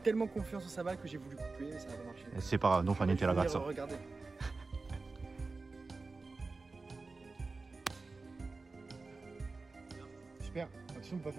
Tellement confiance en sa balle que j'ai voulu couper, mais ça n'a pas marché. C'est pas non, niente la grazia. Regardez. Super. Attention, on peut pas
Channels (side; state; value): left; quieter; 3.8 dB